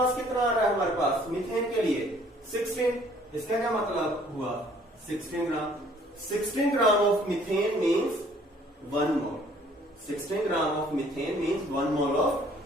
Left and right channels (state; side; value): normal; both; correlation 0.58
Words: कितना आ रहा है हमारे पास मीथेन के लिए? 16। इसका क्या मतलब हुआ? 16 ग्राम। 16 gram of methane means 1 mole. 16 gram of methane means 1 mole of